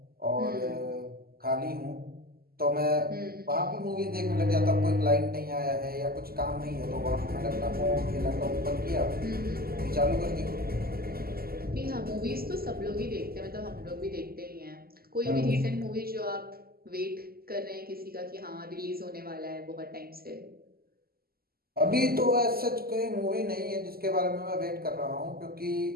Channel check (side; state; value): left; late; 0.44 ms